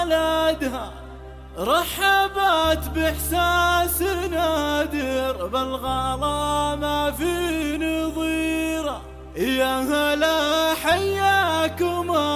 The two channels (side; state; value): both; identical; correlation 1.00